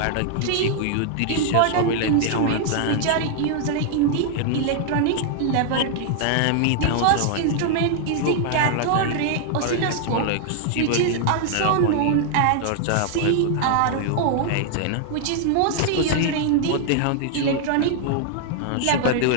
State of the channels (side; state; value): both; different; correlation -0.01